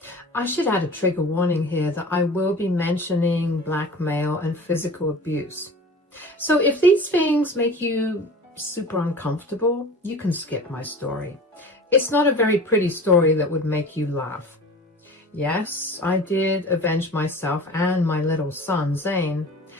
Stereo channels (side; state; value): both; normal; correlation 0.39